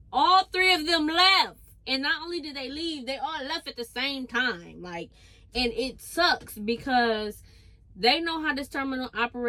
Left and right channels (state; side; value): identical; both; correlation 1.00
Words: all three of them left. And not only did they leave, they all left at the same time. Like, and it sucks because they know how this terminal